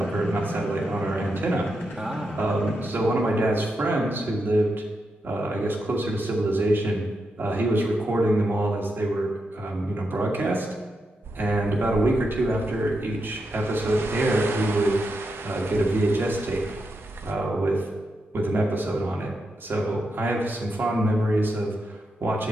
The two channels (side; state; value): both; normal; correlation 0.85